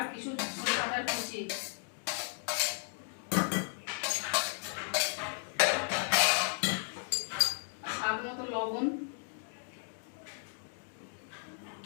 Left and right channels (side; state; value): right; silent; 55 dB below the other